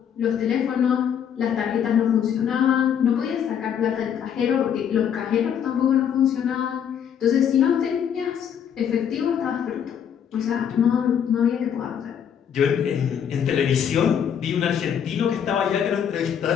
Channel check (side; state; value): right; quieter; 8.5 dB